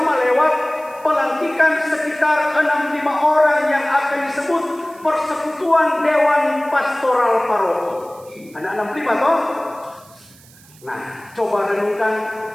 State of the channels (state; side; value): noise; right; hiss, 25 dB below the sound